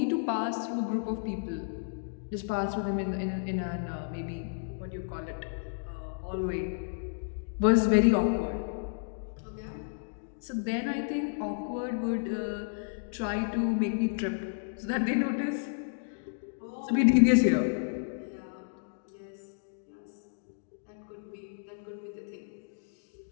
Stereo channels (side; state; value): right; silent; digital silence